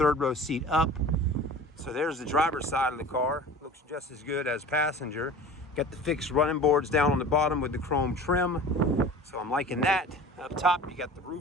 row seat up. So there's the driver's side of the car. Looks just as good as passenger. Got the fixed running boards down on the bottom with the chrome trim. So I'm liking that. Up top, you got the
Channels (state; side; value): normal; both; correlation 0.40